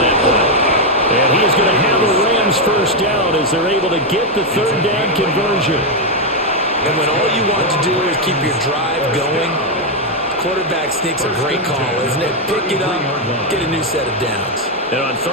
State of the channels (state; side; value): normal; both; correlation 0.03